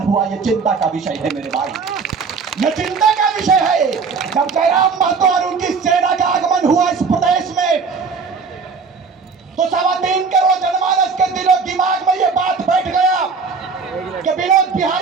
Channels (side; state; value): left; quieter; 5.1 dB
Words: हुआ। ये चिंता का विषय है मेरे भाई, ये चिंता का विषय है। जब जयराम महतो और उनकी सेना का आगमन हुआ इस प्रदेश में, तो 3.25 करोड़ जनमानस के दिलो दिमाग में ये बात बैठ गया कि विनोद